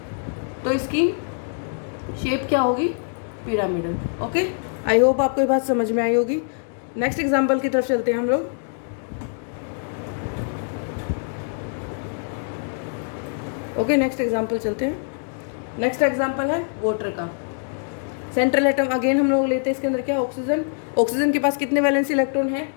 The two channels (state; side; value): silent; right; 59 dB below the other